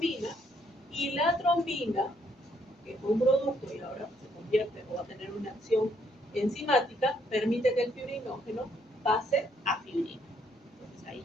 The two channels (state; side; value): normal; both; correlation 0.70